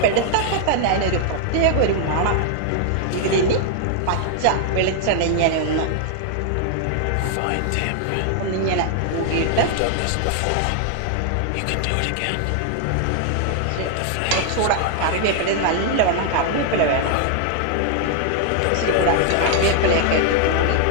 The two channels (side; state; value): both; different; correlation 0.00